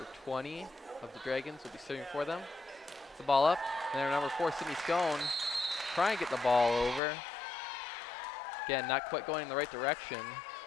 20 of the Dragons will be serving for them. Gets the ball up, and then number 4, Sydney Stone, trying to get the ball over. Again, not quite going in the right direction.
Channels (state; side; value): drops out; right; at 7.0 s